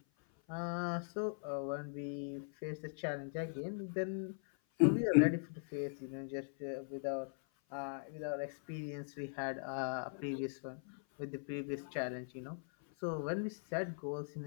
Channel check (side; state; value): right; silent; 51 dB below the other